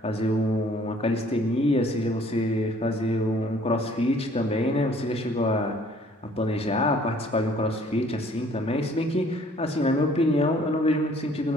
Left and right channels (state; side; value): normal; both; correlation 0.57